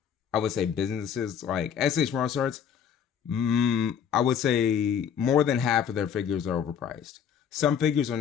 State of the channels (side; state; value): right; quieter; 8.1 dB